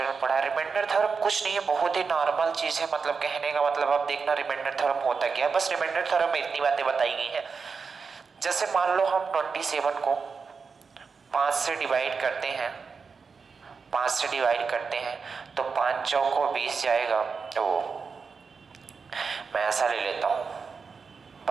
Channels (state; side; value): quieter; left; 5.2 dB